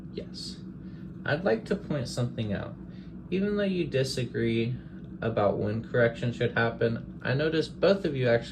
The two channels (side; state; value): both; identical; correlation 1.00